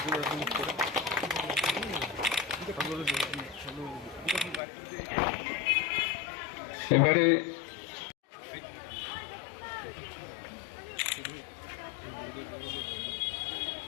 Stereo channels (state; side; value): drops out; right; at 4.6 s